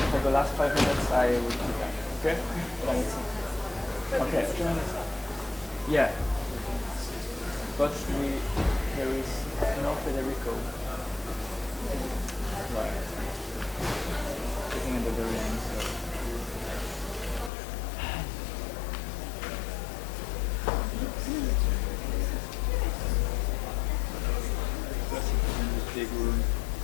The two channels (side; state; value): right; drops out; at 17.5 s